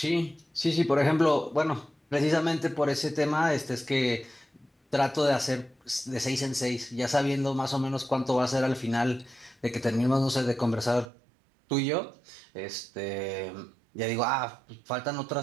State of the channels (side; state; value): left; drops out; at 11.1 s